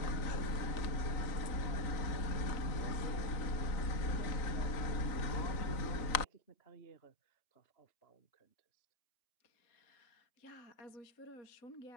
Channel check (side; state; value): right; late; 3.9 ms